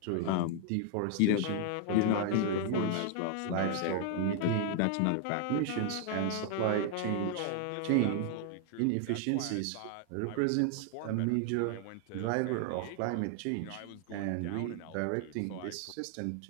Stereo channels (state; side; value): different; both; correlation 0.00